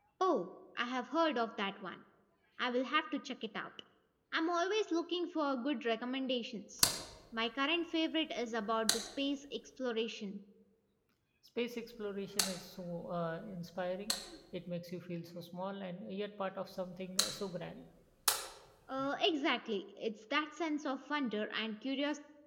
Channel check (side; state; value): both; identical; correlation 1.00